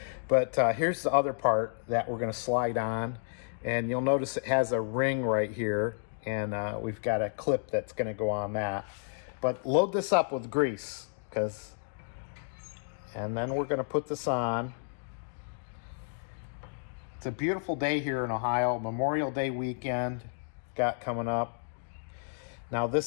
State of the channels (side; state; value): right; silent; digital silence